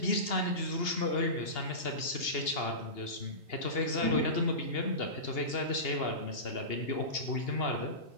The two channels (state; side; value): late; right; 2.8 ms